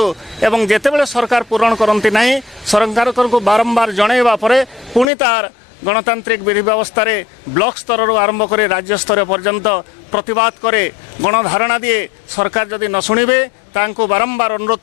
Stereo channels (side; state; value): right; drops out; at 5.1 s